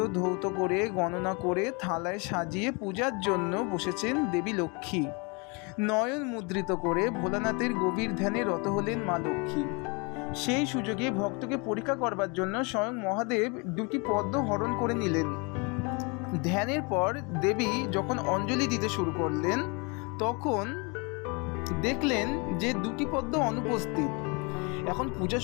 ধৌত করে গণনা করে থালায় সাজিয়ে পূজার জন্য বসেছেন দেবী লক্ষ্মী। নয়ন মুদ্রিত করে ভোলানাথের গভীর ধ্যানে রত হলেন মা লক্ষ্মী। সেই সুযোগে ভক্তকে পরীক্ষা করবার জন্য স্বয়ং মহাদেব 2টি পদ্ম হরণ করে নিলেন। ধ্যানের পর দেবী যখন অঞ্জলি দিতে শুরু করলেন, তখন দেখলেন যে 2টি পদ্ম অনুপস্থিত। এখন পূজা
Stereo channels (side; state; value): right; quieter; 30.8 dB